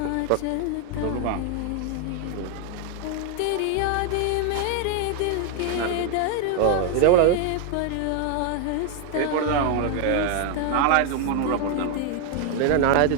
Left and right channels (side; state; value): both; different; correlation 0.01